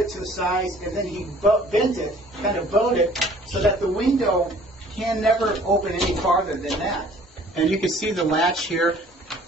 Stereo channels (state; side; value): normal; both; correlation 0.53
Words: to the size, and then he bent it, kind of bowed it, so that the window can never open any farther than that. And you can see the latch here.